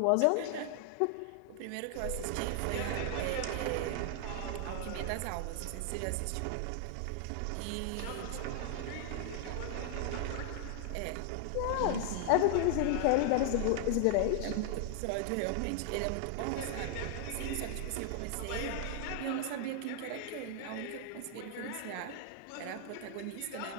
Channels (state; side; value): different; both; correlation 0.00